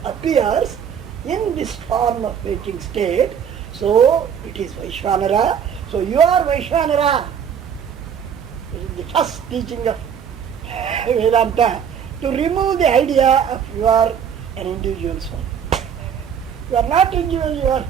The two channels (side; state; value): left; quieter; 7.9 dB